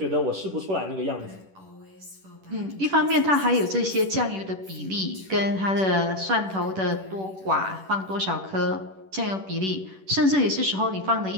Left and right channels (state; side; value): late; left; 10 ms